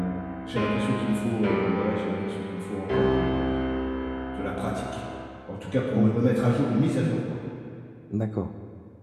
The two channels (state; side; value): identical; both; correlation 1.00